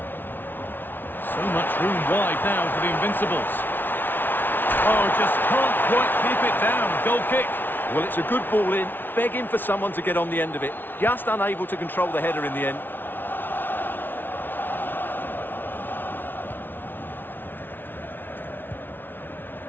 So much room wide now for the Invincibles. Oh, just can't quite keep it down. Goal kick. Well, it's a good ball in, begging for someone to get on the end of it. Just unable to control the header in the end.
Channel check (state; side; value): late; right; 0.096 ms